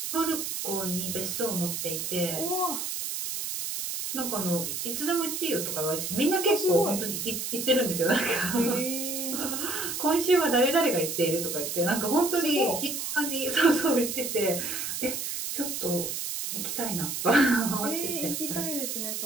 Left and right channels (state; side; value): noise; right; hiss, 3 dB below the sound